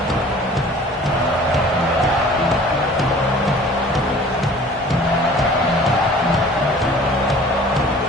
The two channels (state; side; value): normal; both; correlation 0.48